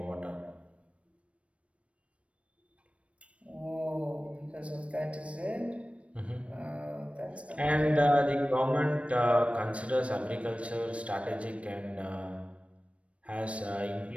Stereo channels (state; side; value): late; left; 0.062 ms